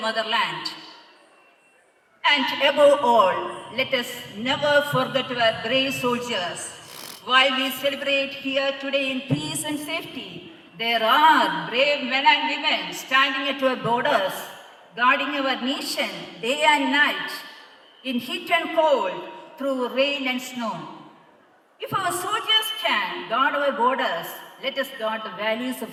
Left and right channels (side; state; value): both; identical; correlation 1.00